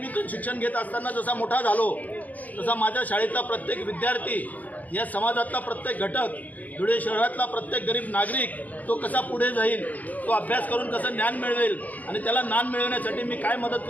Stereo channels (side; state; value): right; late; 0.079 ms